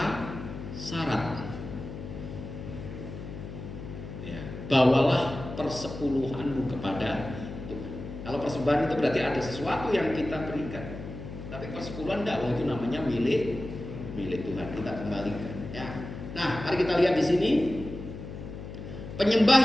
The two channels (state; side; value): noise; left; hum, 10 dB below the sound